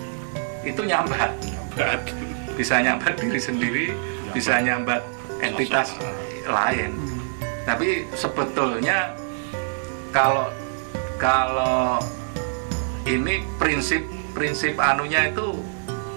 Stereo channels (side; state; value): left; silent; digital silence